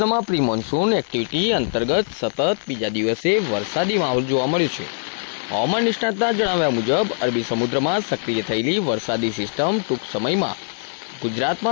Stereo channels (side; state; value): right; silent; digital silence